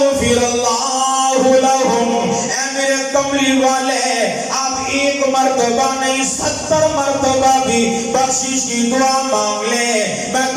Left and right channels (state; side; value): identical; both; correlation 1.00